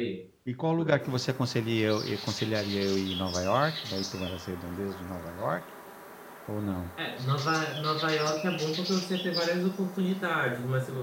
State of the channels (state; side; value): identical; both; correlation 1.00